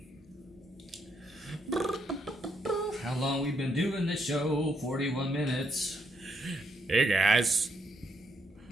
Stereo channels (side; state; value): both; normal; correlation 0.76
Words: How long we been doing this show? 41 minutes. Hey, guys.